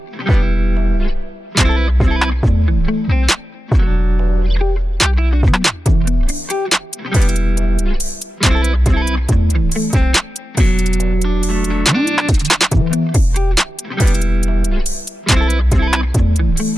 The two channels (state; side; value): normal; both; correlation 0.93